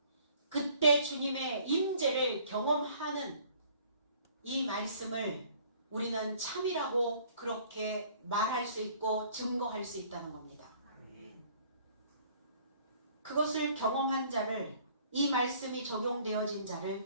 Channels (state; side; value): inverted; both; correlation -0.56